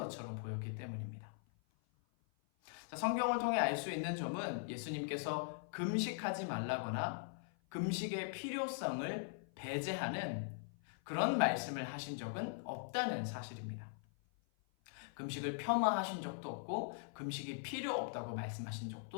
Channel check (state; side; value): silent; right; 50 dB below the other